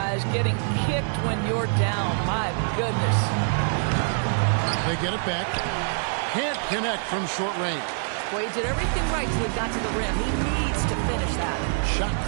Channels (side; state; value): left; silent; 60 dB below the other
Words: Getting kicked when you're down. My goodness. They get it back. Can't connect from short range. Well, he did everything right till he got to the rim. He needs to finish that. Shot